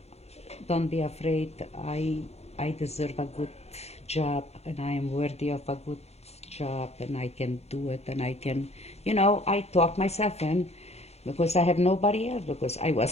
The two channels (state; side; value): late; right; 0.31 ms